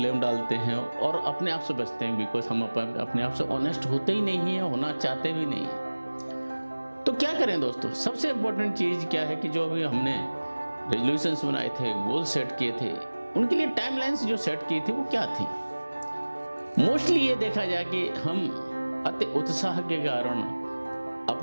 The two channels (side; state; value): both; inverted; correlation -1.00